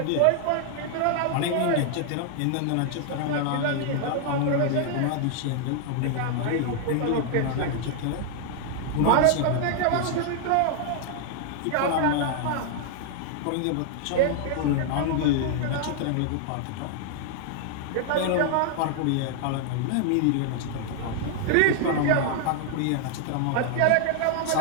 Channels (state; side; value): different; both; correlation 0.00